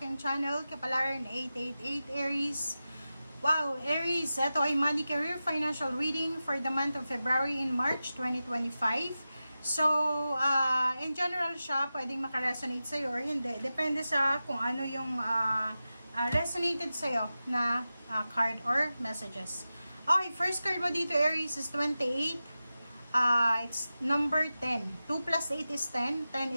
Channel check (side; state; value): both; inverted; correlation -0.94